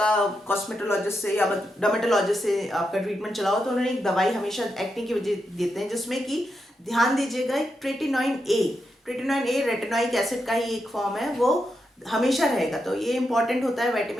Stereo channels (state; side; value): normal; both; correlation 0.85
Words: कॉस्मेटोलॉजिस्ट से या डर्मेटोलॉजिस्ट से आपका ट्रीटमेंट चला हो, तो उन्होंने एक दवाई हमेशा एक्ने की वजह देते हैं, जिसमें कि ध्यान दीजिएगा, एक ट्रेटिनॉइन ए रेटिनोइक एसिड का ही एक फॉर्म है, वो हमेशा रहेगा। तो ये इंपॉर्टेंट होता है,